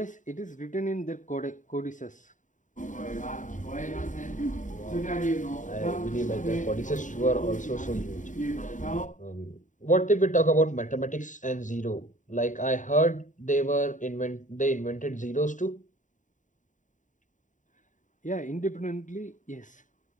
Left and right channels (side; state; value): right; late; 0.37 ms